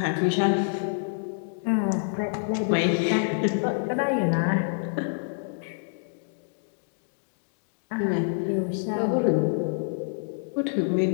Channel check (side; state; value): right; silent; digital silence